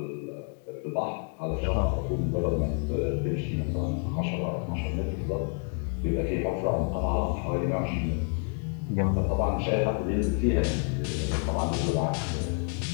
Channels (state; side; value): quieter; right; 39.3 dB